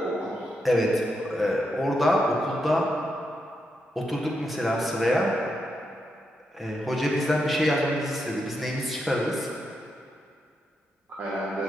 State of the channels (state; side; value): normal; both; correlation 0.83